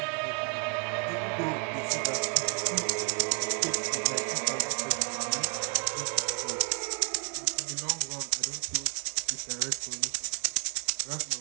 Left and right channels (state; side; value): quieter; left; 38.6 dB